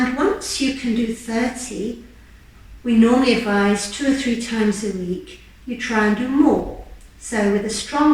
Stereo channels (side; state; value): both; identical; correlation 1.00